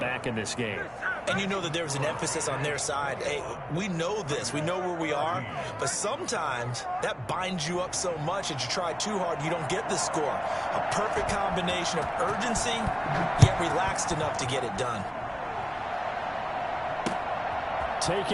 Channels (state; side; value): identical; both; correlation 1.00